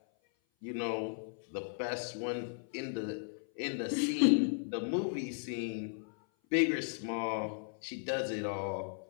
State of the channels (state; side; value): silent; right; 54 dB below the other